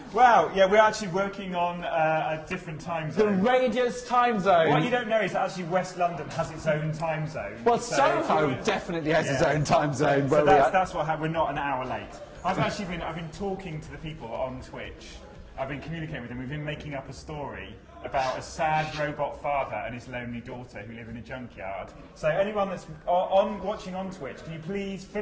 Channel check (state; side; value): identical; both; correlation 1.00